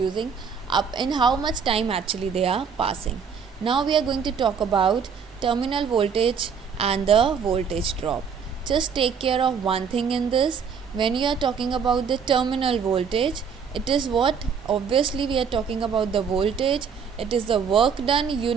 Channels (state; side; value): quieter; left; 6.5 dB